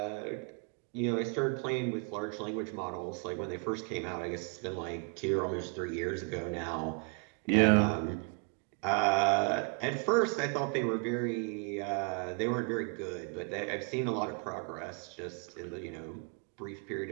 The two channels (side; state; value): left; quieter; 38.3 dB